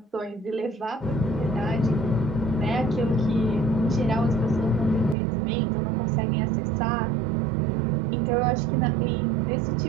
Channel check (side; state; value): left; drops out; at 5.2 s